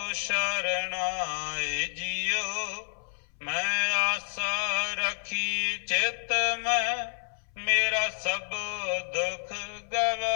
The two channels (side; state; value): right; silent; 58 dB below the other